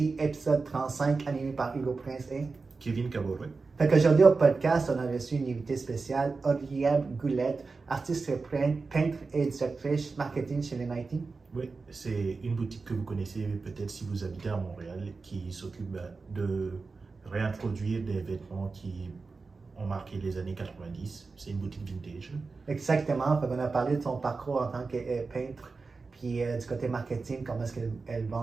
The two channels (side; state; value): left; quieter; 4.2 dB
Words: épisode 35, animé par Hugo Prince et Kevin Caboret. Fait qu'aujourd'hui au podcast, on a reçu une invitée spéciale, Audrienne Goulette, artiste peintre et directrice marketing chez les Nike. Oui, c'est une boutique que vous connaissez peut-être si vous habitez à Montréal qui s'occupe de réintroduire des vêtements qui ont marqué les années 90. C'est une boutique vintage. Exactement, fait qu'on a parlé de son parcours en tant que peintre, puis du côté marketing, comment est-ce qu'elle